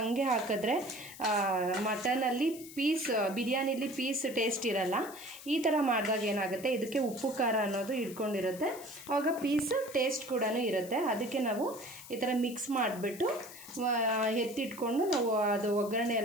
ಹಾಕಿದ್ರೆ ಮಟನಲ್ಲಿ ಬಿರಿಯಾನಿಲಿ ಪೀಸ್ ಟೇಸ್ಟ್ ಇರಲ್ಲ. ಈ ಥರ ಮಾಡಿದಾಗ ಏನಾಗುತ್ತೆ, ಇದಕ್ಕೆ ಉಪ್ಪು ಖಾರ ಅನ್ನೋದು ಹಿಡ್ಕೊಂಡಿರುತ್ತೆ. ಆವಾಗ ಪೀಸ್ ಟೇಸ್ಟ್ ಕೂಡ ಇರುತ್ತೆ. ಅದಕ್ಕೆ ನಾವು ಈ ಥರ ಮಿಕ್ಸ್ ಮಾಡಿಬಿಟ್ಟು ಎತ್ತಿಟ್ಕೊಂಡು ನಾವು ಅದು ಒಗ್ಗರಣೆ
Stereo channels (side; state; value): left; noise; hiss, 16 dB below the sound